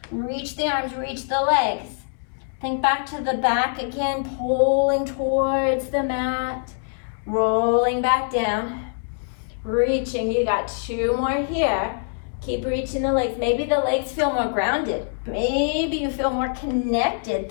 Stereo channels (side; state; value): right; silent; 63 dB below the other